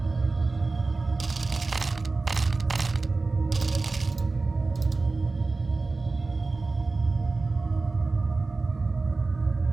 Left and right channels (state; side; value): quieter; left; 3.7 dB